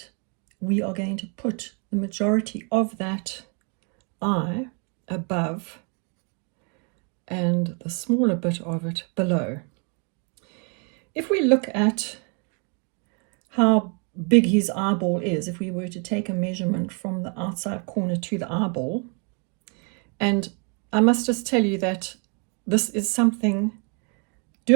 we are going to put the majority of that eye above and the smaller bit of it below. If we look at how big his eyeball is, if we were to take a measurement from the outside corner to the eyeball, and I must just tell you that this is something,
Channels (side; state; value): left; quieter; 36.7 dB